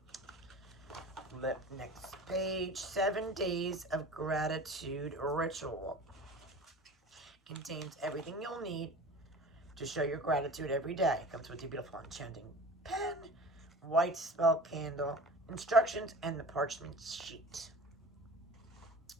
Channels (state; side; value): normal; both; correlation 0.38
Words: Flip next page. 7 Days of Gratitude Ritual. Contains everything you'll need to show your gratitude every day. Comes with your beautiful enchanting pen, white spell candle, instructions, and the parchment sheet.